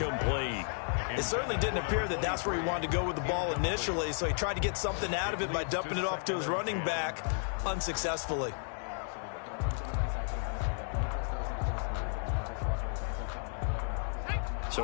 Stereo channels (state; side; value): silent; right; 56 dB below the other